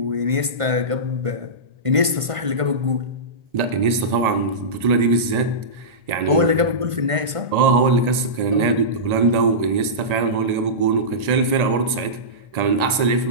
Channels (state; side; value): late; left; 1.5 ms